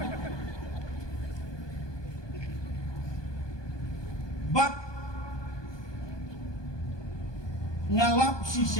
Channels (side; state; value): right; late; 1.2 ms